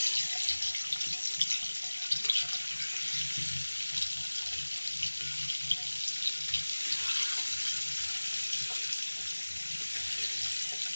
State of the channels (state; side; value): inverted; both; correlation -1.00